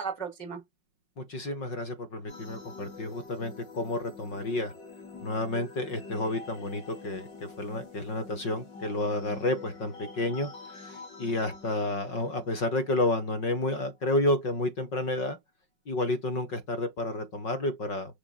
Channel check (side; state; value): right; late; 5.5 ms